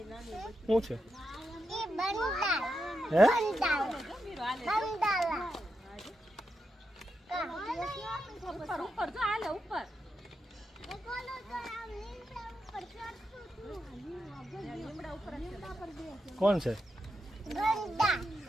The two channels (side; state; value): both; normal; correlation 0.86